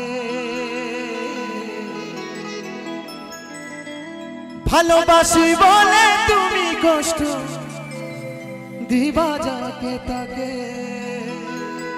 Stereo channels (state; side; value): identical; both; correlation 1.00